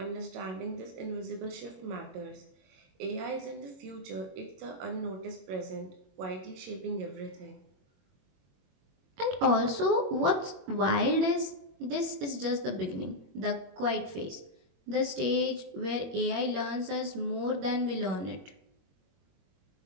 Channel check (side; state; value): left; late; 22 ms